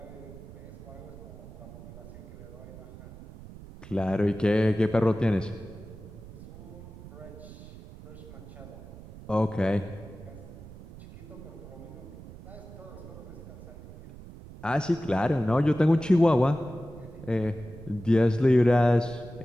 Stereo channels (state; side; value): noise; right; rumble, 16 dB below the sound